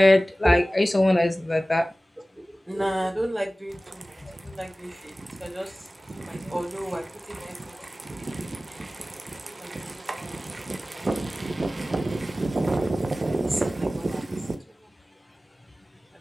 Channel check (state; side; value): normal; both; correlation 0.97